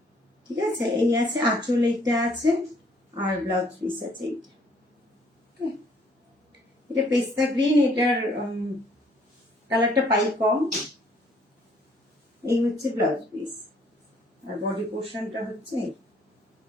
ঠিক আছে, এই আছে আঁচল, এইটা আছে, আর ব্লাউজ পিস আছে এইটা। এটা পেস্তা গ্রিন, এটার কালারটা পাই কম। এই হচ্ছে ব্লাউজ পিস, আর বডি পোর্শনটা হচ্ছে।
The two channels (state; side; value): normal; both; correlation 0.63